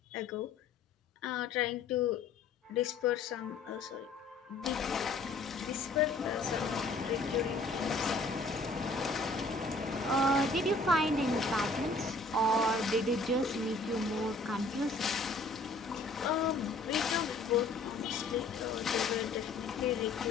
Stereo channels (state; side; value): quieter; right; 3.3 dB